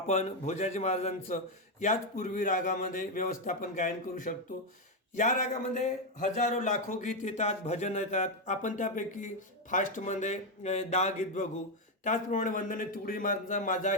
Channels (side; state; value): both; normal; correlation 0.05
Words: भोजाजी महाराजांचं याच पूर्वी रागामध्ये व्यवस्थापन गायन करू शकतो. या रागामध्ये हजारो लाखो गीत येतात, भजन येतात. आपण त्यापैकी फास्टमध्ये 10 गीत बघू. त्याचप्रमाणे वंदने तुकोजी महाराजांचा माझा